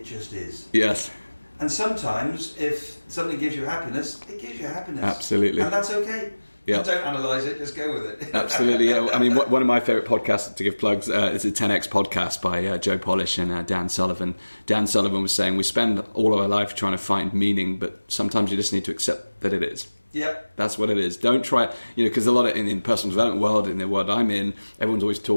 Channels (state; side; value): inverted; both; correlation -1.00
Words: just is. Yes. And sometimes if something gives you happiness, it gives you happiness. Absolutely. And that's okay. Yeah. Don't analyse it, just go with it. Absolutely, yeah. I mean, one of my favourite podcasts, to give plugs, is a 10X podcast by Joe Polish and Dan Sullivan. Dan Sullivan was saying, we spend all of our life trying to find meaning, but sometimes you just need to accept that it is. Yeah. That's what it is. Don't try, because a lot of, in the personal development world, in the world I'm in, everyone's always